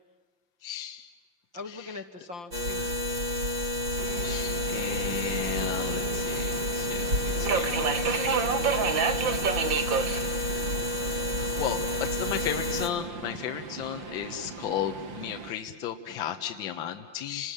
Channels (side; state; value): left; late; 5.8 ms